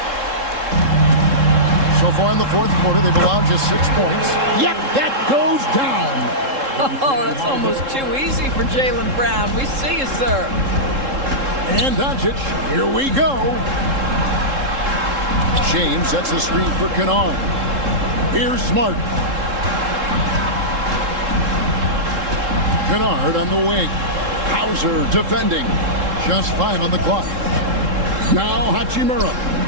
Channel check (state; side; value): late; left; 3.7 ms